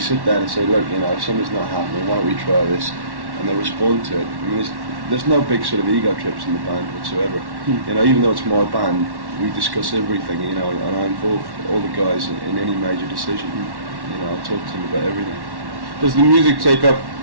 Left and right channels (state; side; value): late; left; 1.1 ms